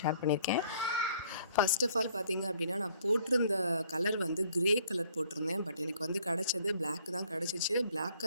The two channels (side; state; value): both; inverted; correlation -0.61